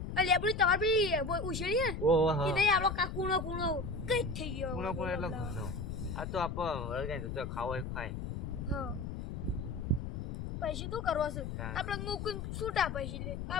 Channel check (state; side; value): noise; left; rumble, 5 dB below the sound